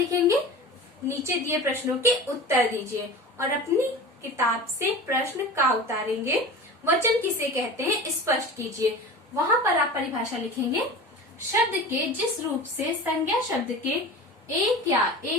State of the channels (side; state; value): both; normal; correlation 0.34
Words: नीचे दिए प्रश्नों के उत्तर दीजिए और अपनी किताब से प्रश्न का उतारेंगे। वचन किसे कहते हैं स्पष्ट कीजिए। वहां पर आप परिभाषा लिखेंगे, शब्द के जिस रूप से संज्ञा शब्द के एक या